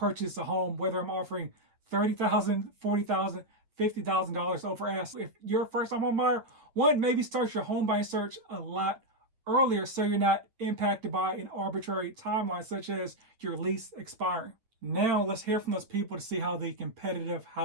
a home, whether I'm offering $30,000, $40,000, $50,000 over ask. If you're a first-time home buyer, one, maybe start your home buying search a lot earlier so you're not impacted by an arbitrary timeline such as your lease expiring. Now let's hear from those people to see how the competitive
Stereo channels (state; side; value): late; left; 8.9 ms